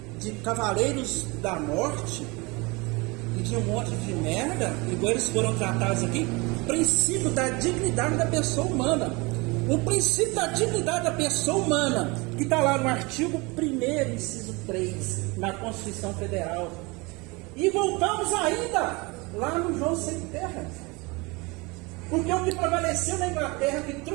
de cavaleiros da morte e de um monte de merda, igual eles foram tratados aqui? O princípio da dignidade da pessoa humana. O princípio da dignidade da pessoa humana, que está lá no artigo 1º, inciso 3, na Constituição Federal. E voltamos ainda lá no João Sem Terra. Porque o que prevaleceu na Inglaterra, que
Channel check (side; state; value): left; quieter; 25.8 dB